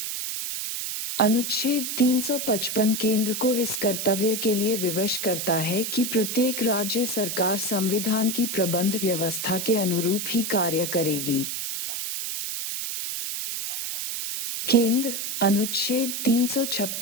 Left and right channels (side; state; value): right; noise; hiss, 3 dB below the sound